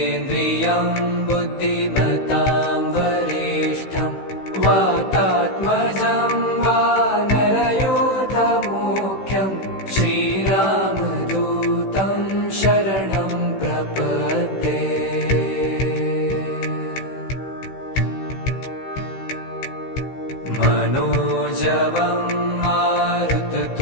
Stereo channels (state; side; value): late; right; 16 ms